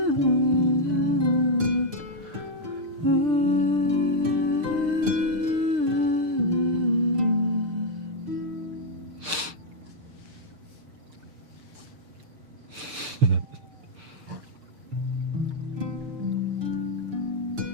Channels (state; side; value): late; left; 6.6 ms